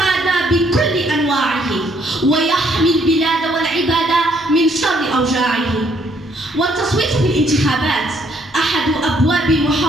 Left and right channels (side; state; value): both; normal; correlation 0.68